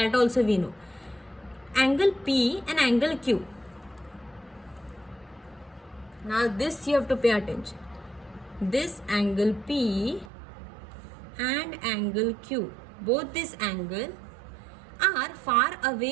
also we know. Angle P and angle Q. Now this you have to pay attention. This angle P and angle Q, both this angle are far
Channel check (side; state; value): left; drops out; at 10.3 s